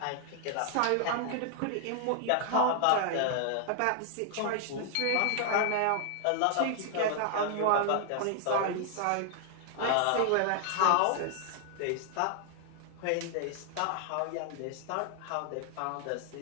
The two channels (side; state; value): both; different; correlation 0.00